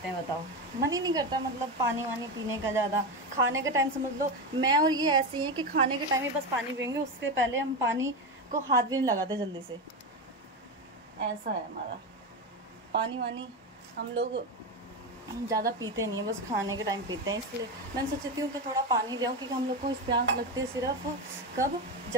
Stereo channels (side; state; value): both; normal; correlation 0.16